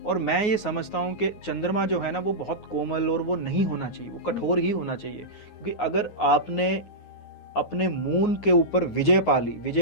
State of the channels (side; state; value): right; late; 9.5 ms